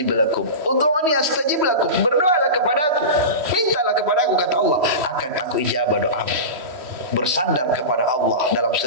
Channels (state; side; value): late; left; 3.1 ms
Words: lakum. Ud'uni astajib lakum. Berdoalah kepadaku, mintalah kepadaku, kata Allah, akan aku ijabah doamu. Bersandar kepada Allah dalam